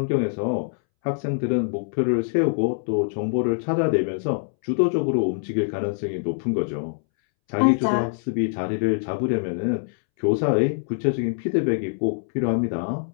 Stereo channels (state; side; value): silent; right; 63 dB below the other